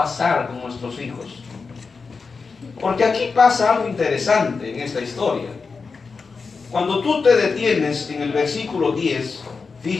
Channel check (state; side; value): quieter; right; 4.8 dB